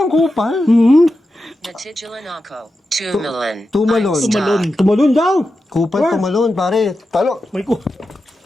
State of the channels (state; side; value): normal; both; correlation 0.90